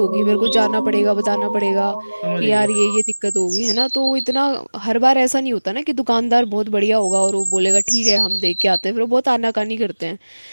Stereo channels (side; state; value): both; inverted; correlation -1.00